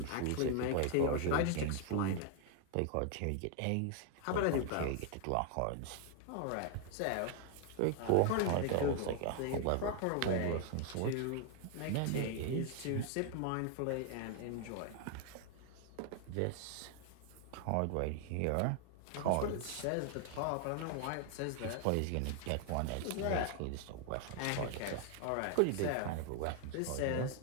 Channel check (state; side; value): different; both; correlation 0.00